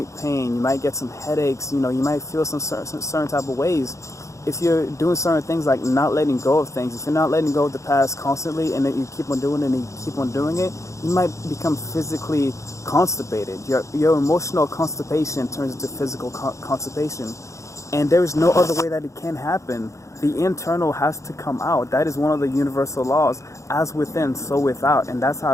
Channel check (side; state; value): right; late; 0.15 ms